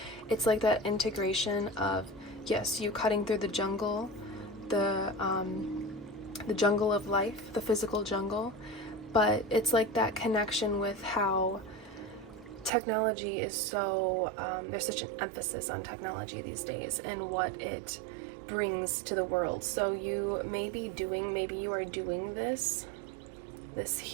it's like that integration of, yes, you cutting through the jungle, the jungle of life, the physical jungle, but it's like that connection with how technology is so, there's such an emphasis on technology these days and what it brings to the world. So you may be doing, maybe you are doing this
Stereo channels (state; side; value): drops out; left; at 12.7 s